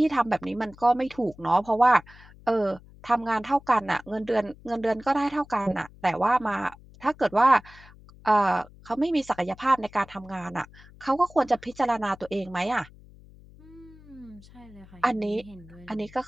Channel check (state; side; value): noise; left; hum, 22 dB below the sound